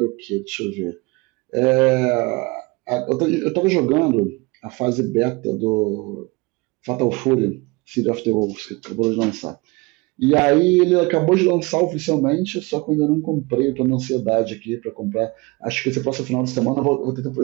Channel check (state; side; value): quieter; left; 25.2 dB